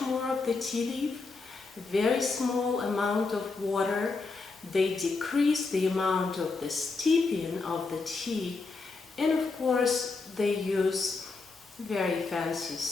of the tea leaf, very small amount of water. They decrease the amount of the steeping of the tea, and of course they use very fancy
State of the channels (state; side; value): quieter; right; 4.0 dB